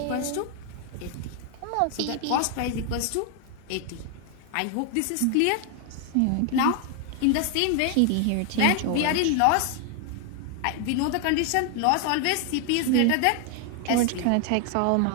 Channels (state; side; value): different; both; correlation 0.00